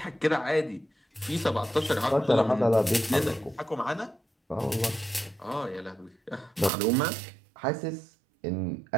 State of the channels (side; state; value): left; drops out; at 6.7 s